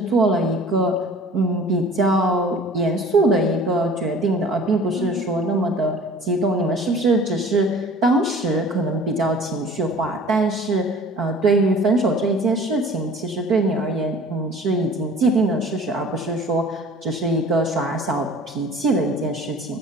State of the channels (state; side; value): normal; both; correlation 0.47